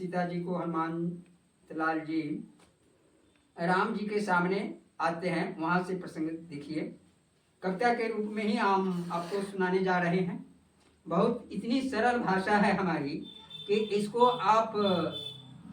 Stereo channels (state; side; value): identical; both; correlation 1.00